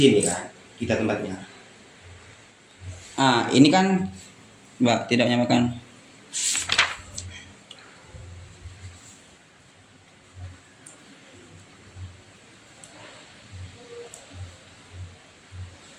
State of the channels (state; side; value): identical; both; correlation 1.00